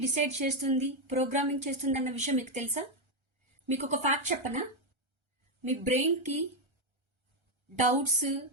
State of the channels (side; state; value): left; late; 1.3 ms